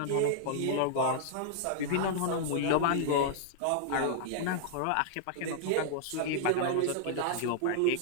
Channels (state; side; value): different; both; correlation -0.01